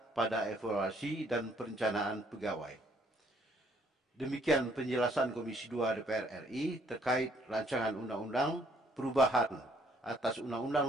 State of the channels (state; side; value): normal; both; correlation 0.65